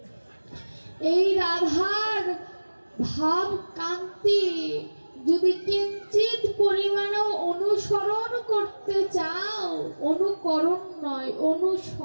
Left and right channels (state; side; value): inverted; both; correlation -1.00